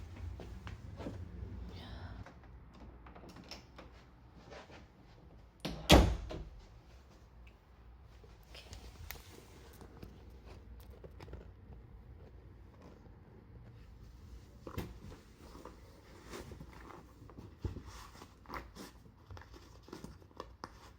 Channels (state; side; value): identical; both; correlation 1.00